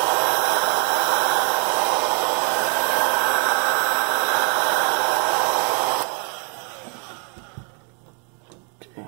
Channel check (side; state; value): left; quieter; 38.2 dB